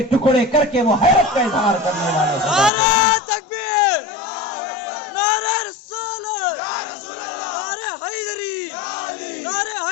ٹکڑے کر کے وہ حیرت کا اظہار کرنے والے. نعرہ تکبیر, نعرہ رسالت, نعرہ حیدری, نعرہ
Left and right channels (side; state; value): right; drops out; at 2.7 s